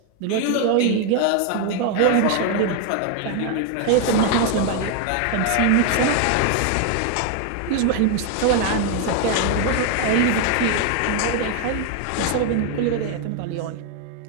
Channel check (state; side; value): different; both; correlation 0.01